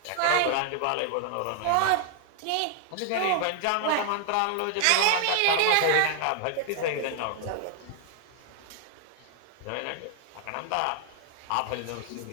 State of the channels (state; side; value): different; both; correlation 0.00